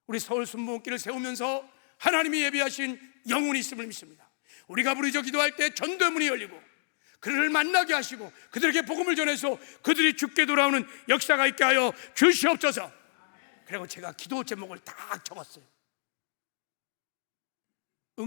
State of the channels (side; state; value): right; silent; digital silence